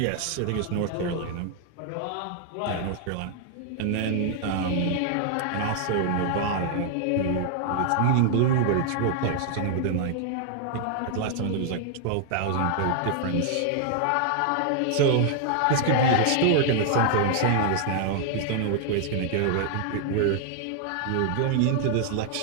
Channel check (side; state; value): both; different; correlation 0.00